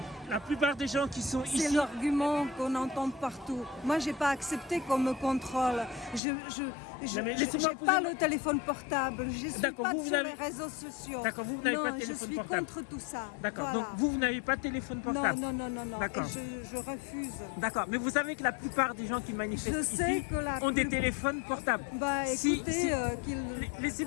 la plupart des gens qui sont ici... C'est l'argument qu'on entend partout. Moi, je n'ai pas accepté qu'on me contrôle. Je n'ai pas le téléphone portable. Je ne suis pas sur les réseaux sociaux. D'accord, vous n'avez pas de téléphone portable. Je suis contre tout ça. D'accord, voilà. donc vous n'avez pas de téléphone portable? Non. D'accord. Et je refuse. D'accord, mais vous savez que la plupart des gens qui manifestent ici ont des téléphones portables. Écoutez,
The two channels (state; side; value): drops out; right; at 6.2 s